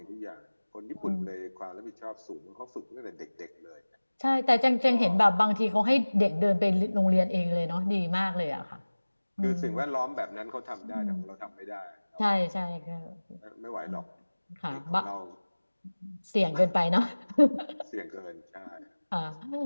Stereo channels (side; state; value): both; inverted; correlation -1.00